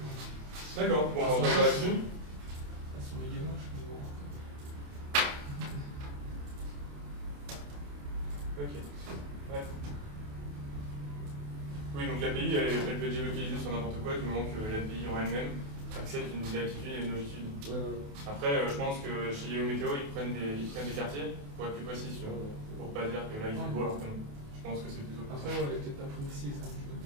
D'accord, bon, on va passer là-dessus. Elles sont méga moches, mais bon. Ok. Ouais. Oui, donc l'API, elle peut être géolocalisée sur n'importe quoi du moment que l'API en elle-même accepte une latitude et une longitude. Ouais, ouais. Après, je pense que chez Yahoo Météo, ils prennent des quartiers pour être plus précis, tu vois, pour pas dire que là il fait beau alors que non. Je pense que c'est plutôt comme ça. Après, ouais, elle est peut-être pas précise. Hein,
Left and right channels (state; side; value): late; left; 28 ms